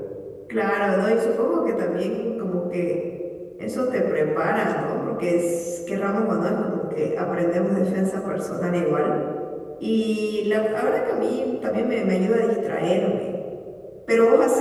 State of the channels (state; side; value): identical; both; correlation 1.00